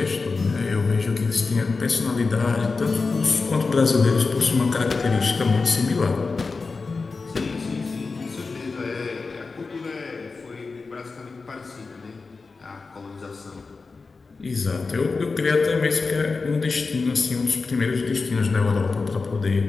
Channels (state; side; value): quieter; right; 4.2 dB